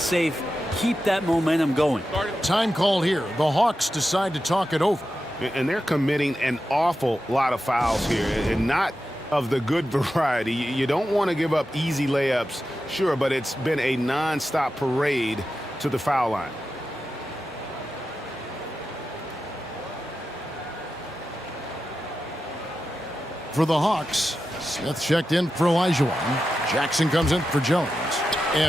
Keep that momentum going. Time called here. The Hawks decide to talk it over. And they're committing an awful lot of fouls here, and not of the good variety. You don't want to give up easy layups, sure, but it's been a non-stop parade to the foul line. For the Hawks, Smith checked in for Olajuwon. Jackson comes in for Jones.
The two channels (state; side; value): normal; both; correlation 0.90